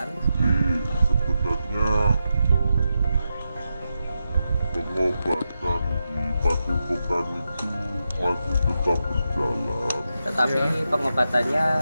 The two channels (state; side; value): inverted; both; correlation -0.88